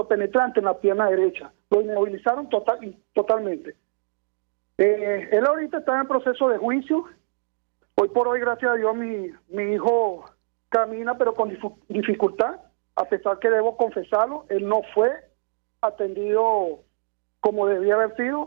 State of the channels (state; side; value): silent; left; digital silence